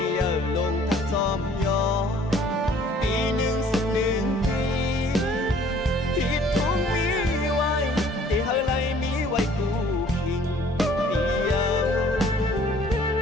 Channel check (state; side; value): normal; both; correlation 0.56